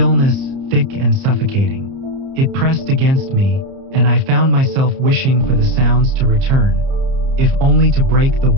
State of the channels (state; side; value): late; left; 30 ms